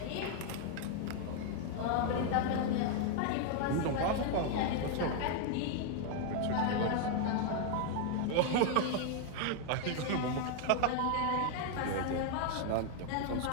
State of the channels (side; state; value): both; different; correlation 0.00